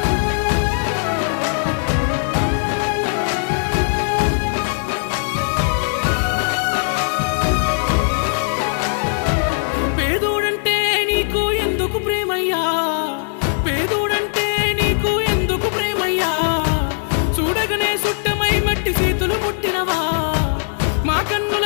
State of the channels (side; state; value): right; silent; digital silence